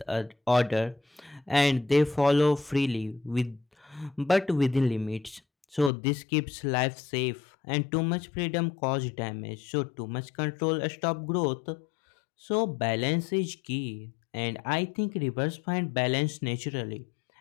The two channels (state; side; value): drops out; right; at 5.9 s